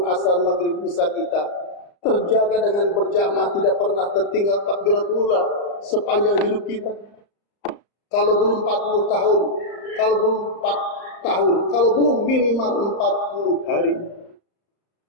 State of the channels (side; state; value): right; late; 35 ms